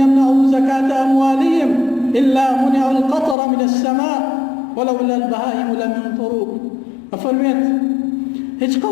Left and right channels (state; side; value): drops out; right; at 3.4 s